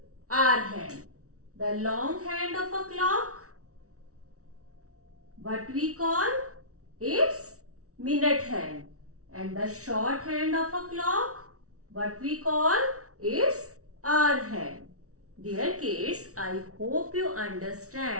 hour hand. The long hand of a clock, what we call? It's minute hand. And the short hand of a clock, what we call? It's hour hand. Dear kids, I hope you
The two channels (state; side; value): late; left; 0.65 ms